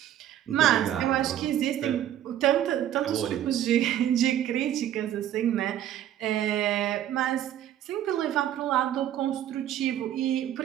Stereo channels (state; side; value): quieter; left; 11.5 dB